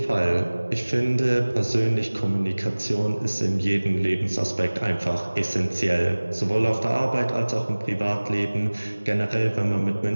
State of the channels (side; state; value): both; inverted; correlation -1.00